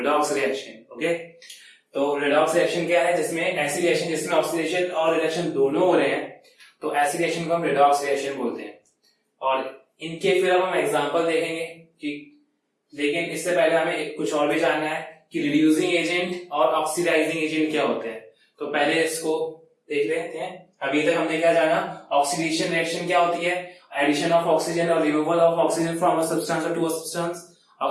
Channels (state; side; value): identical; both; correlation 1.00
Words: रिएक्शन। ओके, तो रिडॉक्स रिएक्शन क्या है, जिसमें ऐसी रिएक्शन जिसमें ऑक्सीडेशन और रिडक्शन दोनों हो रहे हैं, तो ऐसी रिएक्शन को हम रिडॉक्स रिएक्शन बोलते हैं। और इनके फिर अब हम एग्जांपल देखेंगे कि, लेकिन इससे पहले हमें कुछ और भी जानना है कि रिड्यूसिंग एजेंट और ऑक्सीडाइजिंग एजेंट क्या होते हैं। तो पहले इसको देख लेते हैं। अभी तक हमने क्या जाना, ऑक्सीडेशन रिएक्शन क्या होती है, एडिशन ऑफ ऑक्सीजन और removal of oxygen from a substance to a substance,